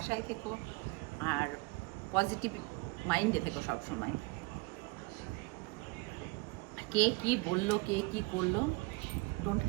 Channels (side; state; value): left; quieter; 25.0 dB